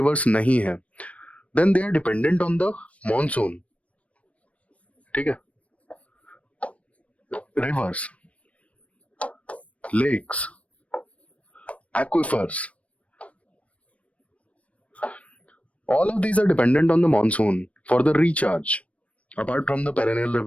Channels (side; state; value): right; late; 0.065 ms